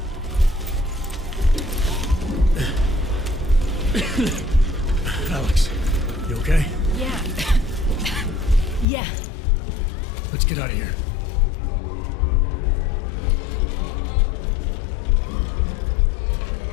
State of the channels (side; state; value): right; drops out; at 8.8 s